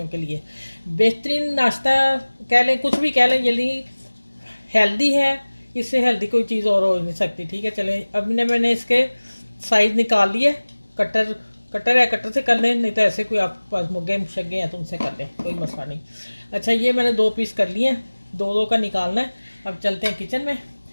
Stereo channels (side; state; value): both; inverted; correlation -1.00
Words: के लिए। बेहतरीन नाश्ता कह लें, कुछ भी कह लें, यदि हेल्दी है, इससे हेल्दी कोई चीज़ और हो नहीं सकती। ठीक है, चलें, अब मैंने इसके साइज़ निकाल लिए। कटर कटर है, कटर से कर लें, नहीं तो ऐसे कोई आपके पास मुग्गे शग्गे हैं तो उनसे कर लें, कोई मसला नहीं। अच्छा, ये मैंने 2 पीस कर लिए हैं, दो दो का निकालना है। अब चलते हैं किचन में